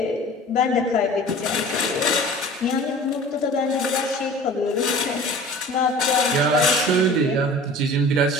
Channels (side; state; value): both; normal; correlation 0.42